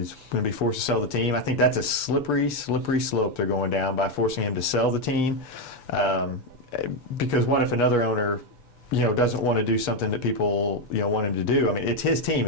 going to be forced to sell the team. I think that's a slippery slope they're going down by forcing him to sell the team. Because what if another owner... doesn't want to do something that people, want him to do. I mean, it's his team.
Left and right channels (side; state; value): right; late; 6.9 ms